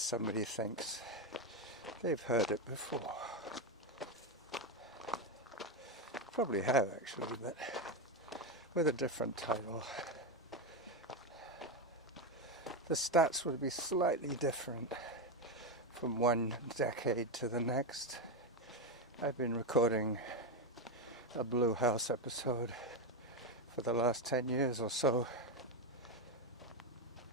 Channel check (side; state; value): both; normal; correlation 0.09